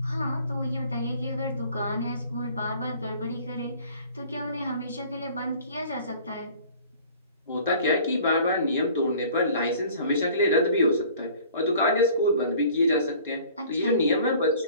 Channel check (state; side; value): inverted; both; correlation -0.49